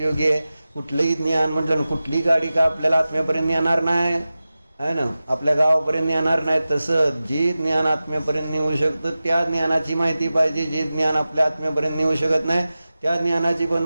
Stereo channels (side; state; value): both; inverted; correlation -0.95